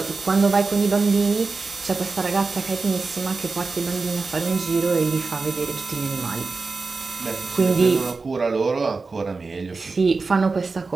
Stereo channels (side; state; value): left; quieter; 4.1 dB